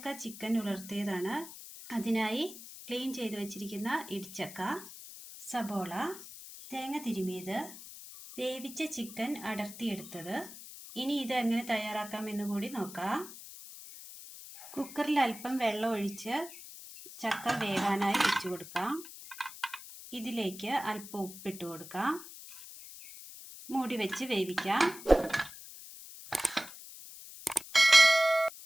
ചിക്കൻ ഉലർത്തിയതാണ്. അതിനായി ക്ലീൻ ചെയ്ത് വെച്ചിരിക്കുന്ന ഇടിച്ചക്ക, സബോള, തേങ്ങ തിരുമിയത്, വേവിച്ച ചിക്കൻ അടർത്തിയെടുത്തത്. ഇനി ഇത് എങ്ങനെ തയ്യാറാക്കാം എന്ന് കൂടി നോക്കാം. കുക്കറിൽ അല്പം വെള്ളം ഒഴിച്ച് ചക്ക വേകാനായി വെച്ചു കൊടുക്കാം. ഇതിലേക്ക് അല്പം ഉപ്പിട്ട് കൊടുക്കാം. മൂടി വെച്ച് വേവിക്കാം.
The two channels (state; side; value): noise; left; hiss, 14 dB below the sound